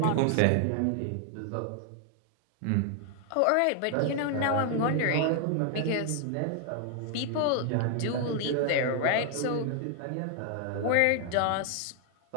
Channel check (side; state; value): both; different; correlation 0.00